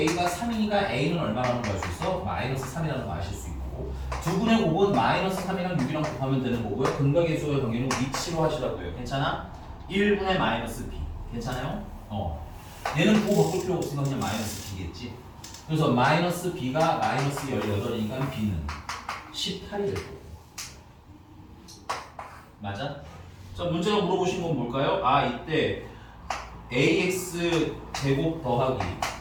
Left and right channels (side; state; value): both; identical; correlation 1.00